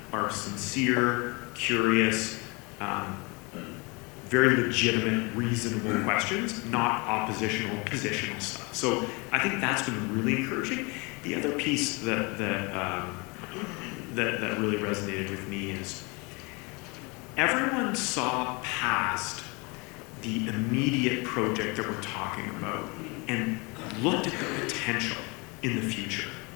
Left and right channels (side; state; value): right; quieter; 28.7 dB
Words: are sincere, curious, very legitimate, reasonable questions, not oppositional, positional stuff. So I think that's been really encouraging. The other piece that really resonated with me is everyone saw past the immediate project that we're talking about and looked at the potential in the future.